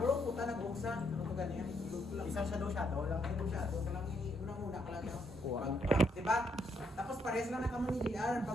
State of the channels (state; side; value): normal; both; correlation 0.74